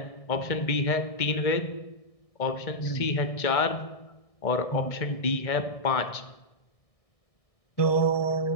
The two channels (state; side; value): late; right; 1.6 ms